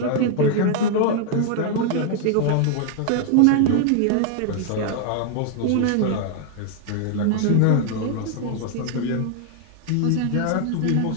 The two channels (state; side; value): different; both; correlation 0.00